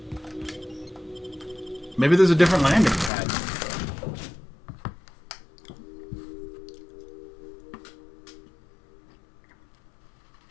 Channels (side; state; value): right; drops out; at 3.1 s